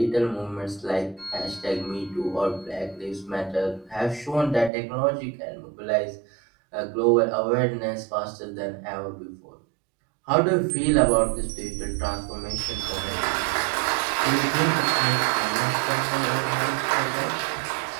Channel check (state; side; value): drops out; left; at 4.7 s